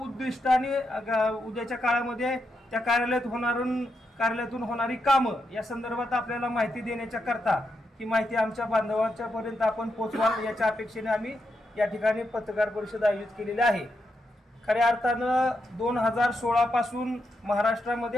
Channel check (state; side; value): normal; both; correlation 0.84